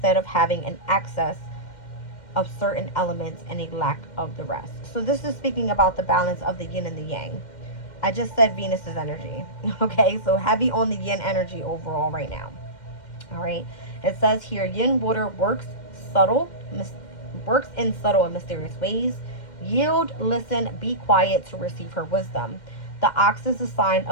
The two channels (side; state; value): right; late; 2.1 ms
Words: of having an excess of certain elements and a lack of the rest. So this is speaking about the balance of the yin and the yang. I just said Venus's energy. Okay, so heavy on the yin energy overall right now. All right. It says here, yin water subtle, works in subtle and mysterious ways. Yield, listen, be quiet to receive her wisdom. The ox is a sign